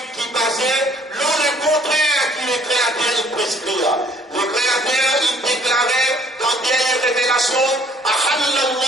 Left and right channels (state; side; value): normal; both; correlation 0.60